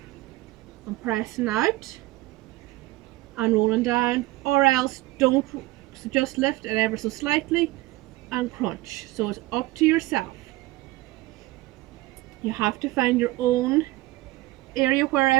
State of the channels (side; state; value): left; quieter; 18.8 dB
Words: and pressing out and rolling down, or else don't, so just lift it ever so slightly and crunch. So it's up to yourself. You have to find your own area